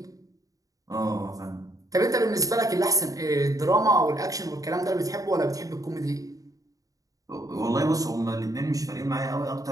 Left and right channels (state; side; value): late; left; 0.17 ms